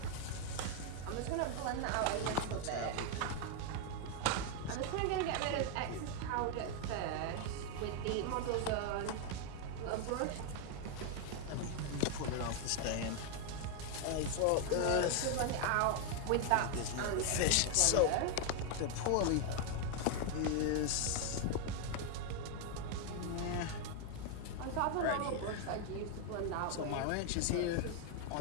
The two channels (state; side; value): different; both; correlation 0.01